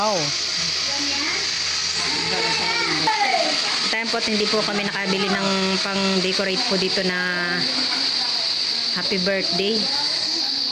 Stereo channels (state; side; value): identical; both; correlation 1.00